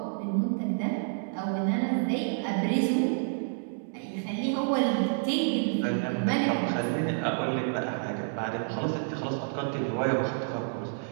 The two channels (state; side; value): silent; left; digital silence